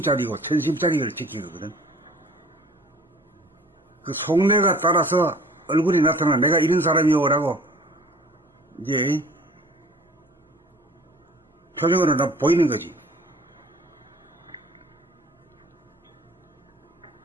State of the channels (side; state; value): both; normal; correlation 0.48